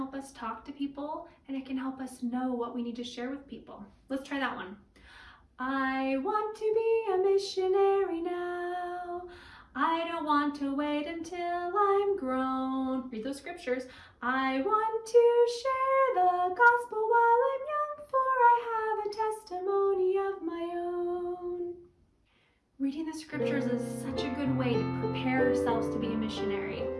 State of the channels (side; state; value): both; identical; correlation 1.00